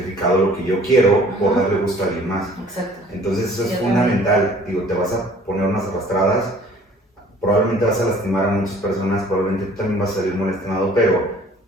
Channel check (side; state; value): both; normal; correlation 0.53